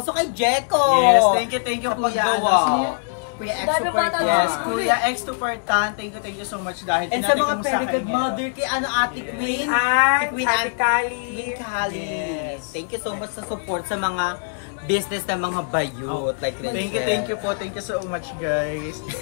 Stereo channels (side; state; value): right; silent; digital silence